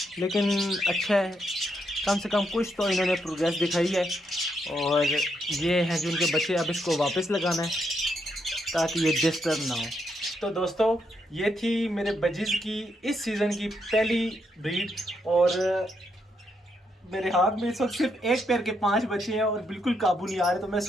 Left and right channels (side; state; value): both; normal; correlation 0.78